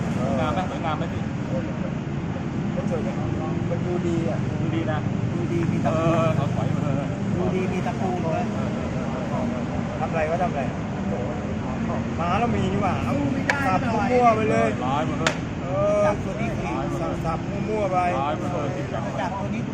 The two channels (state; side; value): identical; both; correlation 1.00